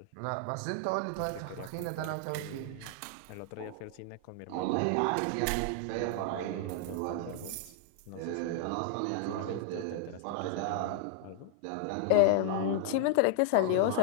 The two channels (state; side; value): different; both; correlation -0.01